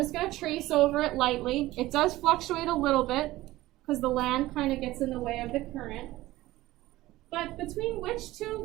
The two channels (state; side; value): quieter; left; 17.2 dB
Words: going to trace over it lightly. It does fluctuate a little bit because the land kind of gets in the way of the current. But between which